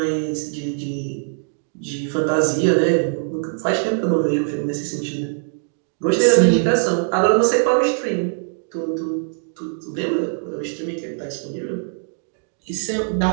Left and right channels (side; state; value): left; silent; 64 dB below the other